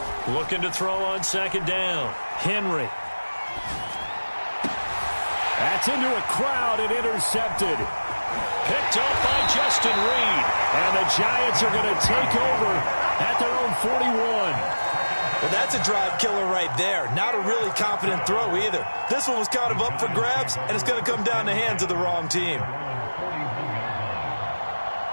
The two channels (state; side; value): inverted; both; correlation -1.00